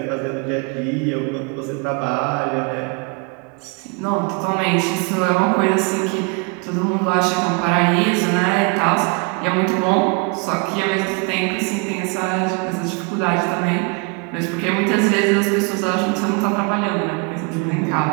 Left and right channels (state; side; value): quieter; left; 32.3 dB